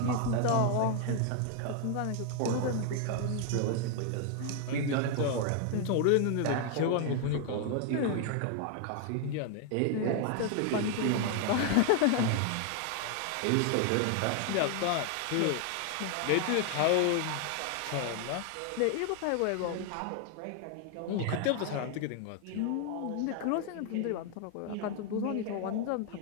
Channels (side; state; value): both; different; correlation 0.00